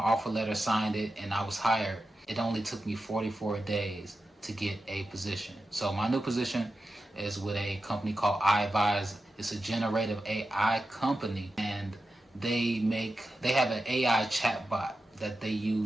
letter, signed it, and I was hired, it only took me 44 days to get a position. So my new position is with a company called iAdvise. It's a generative AI company, and they have an AI chatbot that they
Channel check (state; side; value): normal; both; correlation 0.91